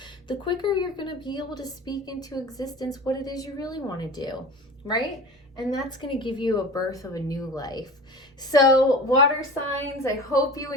the quicker you're going to be able to speak into existence what it is you really want to do, right? And that's going to give you a birth of a new life. So water signs, I hope you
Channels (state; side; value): normal; both; correlation 0.36